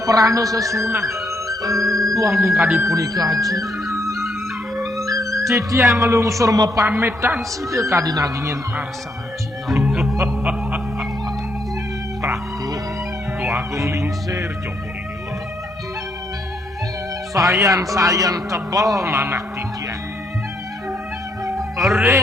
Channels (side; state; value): both; normal; correlation 0.75